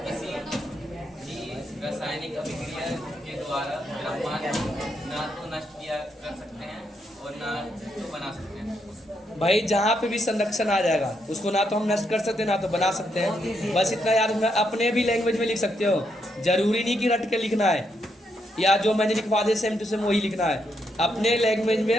किसी भी रासायनिक अभिक्रिया के द्वारा द्रव्यमान ना तो नष्ट किया कर सकते हैं और ना तो बना सकते हैं। भाई जहाँ पे भी संरक्षण आ जाएगा उसको ना तो हम नष्ट कर सकते हैं ना तो बना सकते हैं। बस इतना याद रखना, अपने भी लैंग्वेज में लिख सकते हो, जरूरी नहीं कि रट के लिखना है, या जो मैंने लिखवा दिया सेम टू सेम वही लिखना है, अपने लैंग्वेज में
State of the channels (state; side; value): normal; both; correlation 0.78